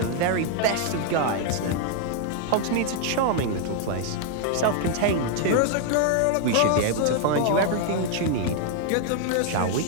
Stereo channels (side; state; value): both; different; correlation 0.00